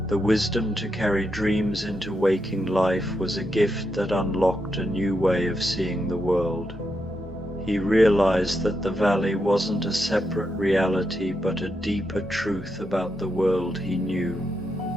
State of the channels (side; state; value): both; normal; correlation 0.84